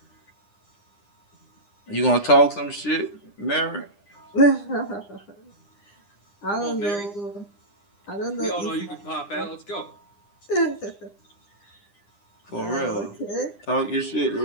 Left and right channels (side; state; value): right; late; 9.9 ms